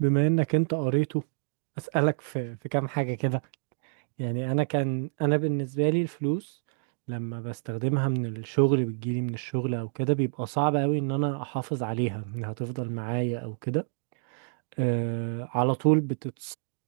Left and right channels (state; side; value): silent; left; digital silence